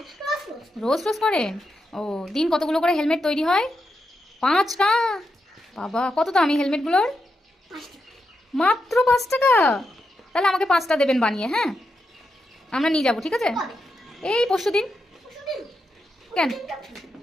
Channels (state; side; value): normal; both; correlation 0.85